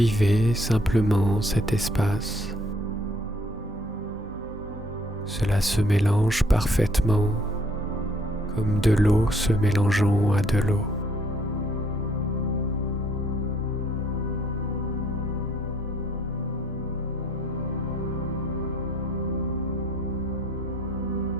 simplement cet espace. Cela se mélange parfaitement comme de l'eau se mélangeant à de l'eau.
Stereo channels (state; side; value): normal; both; correlation 0.63